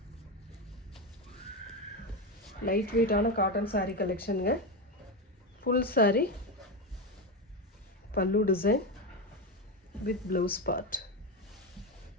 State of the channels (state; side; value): normal; both; correlation 0.14